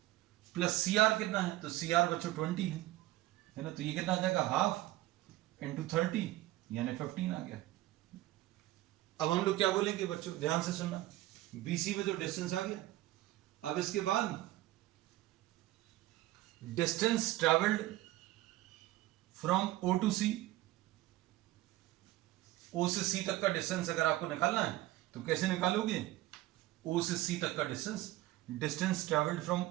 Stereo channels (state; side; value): quieter; left; 16.6 dB